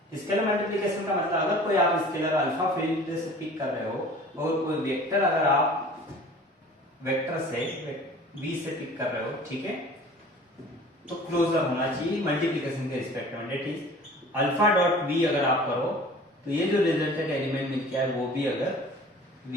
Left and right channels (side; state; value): both; normal; correlation 0.45